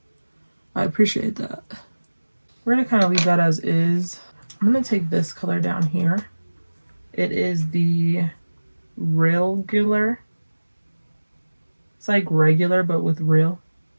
I appreciate that. We're gonna kind of leave that as is. I'm gonna take this color down here. It is the Regular. It's like regular, but with real.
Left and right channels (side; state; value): both; inverted; correlation -1.00